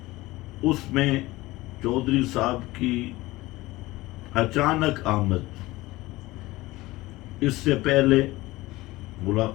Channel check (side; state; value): right; quieter; 19.3 dB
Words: اس میں چودھری صاحب کی اچانک آمد، اس سے پہلے